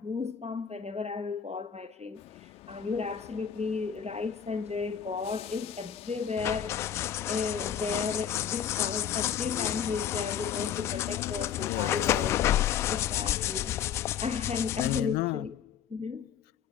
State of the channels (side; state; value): right; quieter; 8.2 dB